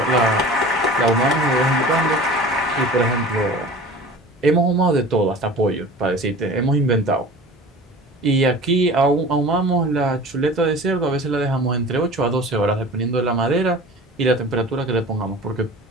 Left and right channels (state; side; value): normal; both; correlation 0.40